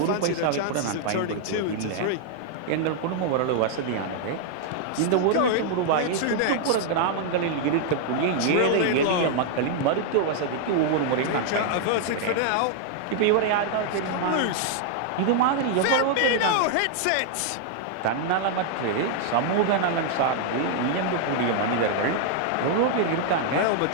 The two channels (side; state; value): both; different; correlation 0.00